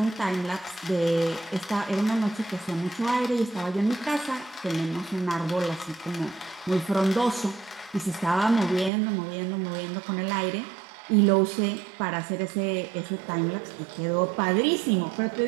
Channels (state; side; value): drops out; left; at 8.9 s